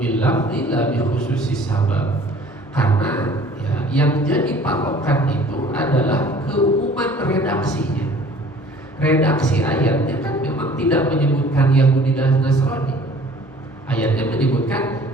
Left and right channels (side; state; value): both; normal; correlation 0.51